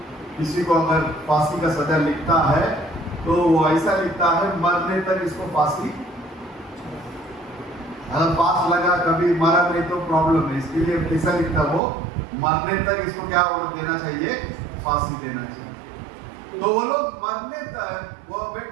किसी को अगर फांसी का सजा लिखता है, तो वो ऐसा लिखता है मरने तक इसको फांसी। अगर पास लगा, कभी मरा नहीं तो प्रॉब्लम है, इसके लिए कैसा लिखता वो, मरने तक इसको क्या देना चाहिए, फांसी देना चाहिए। तो वो लोग मरने तक, वो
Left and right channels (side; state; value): left; drops out; at 11.8 s